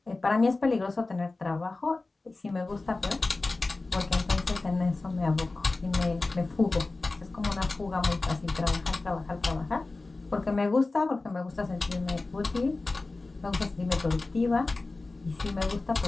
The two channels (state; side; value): quieter; right; 3.4 dB